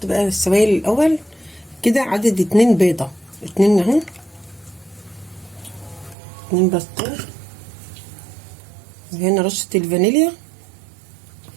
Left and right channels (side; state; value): left; drops out; at 6.2 s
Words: بقى السوائل الاول كده، عدد 2 بيضه، 2 اهو، 2 بسطرمه، وهنا رشه الفانيليا،